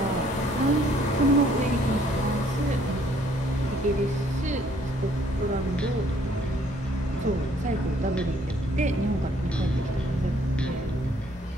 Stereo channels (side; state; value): both; normal; correlation 0.63